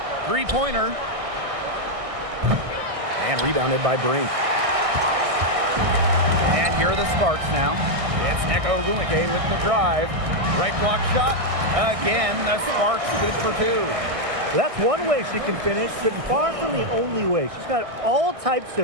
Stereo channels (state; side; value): late; left; 1.6 ms